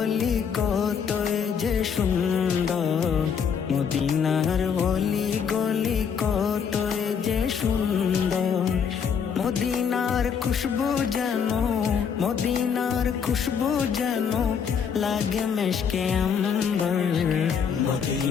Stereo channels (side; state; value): right; quieter; 7.0 dB